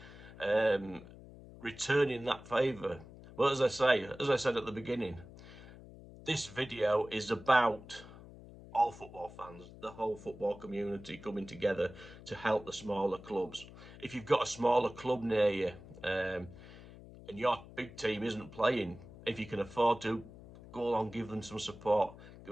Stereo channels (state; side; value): noise; left; hum, 17 dB below the sound